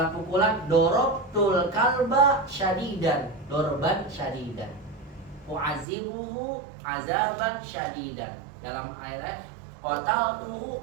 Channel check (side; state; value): left; drops out; at 5.9 s